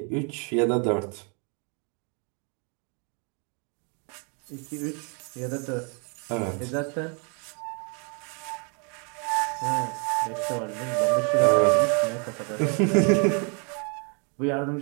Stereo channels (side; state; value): left; quieter; 36.6 dB